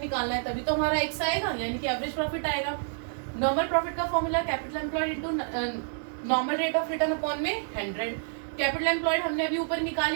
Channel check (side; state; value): left; silent; 59 dB below the other